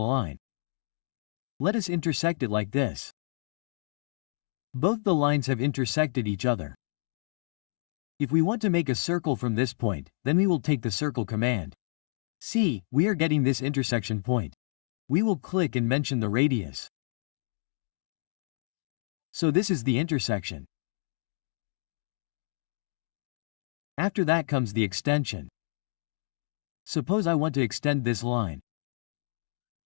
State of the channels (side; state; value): right; silent; digital silence